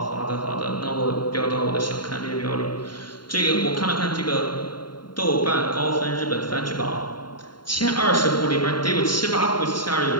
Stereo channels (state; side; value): late; right; 0.72 ms